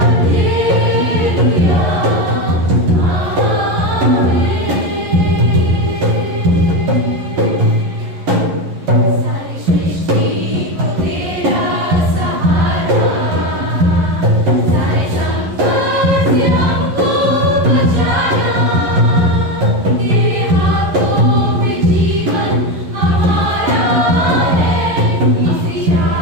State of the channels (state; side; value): late; left; 11 ms